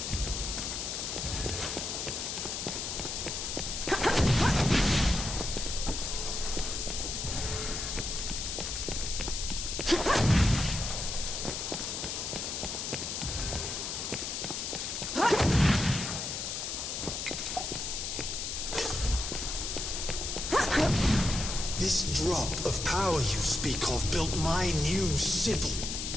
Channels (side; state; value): left; noise; hiss, 4 dB below the sound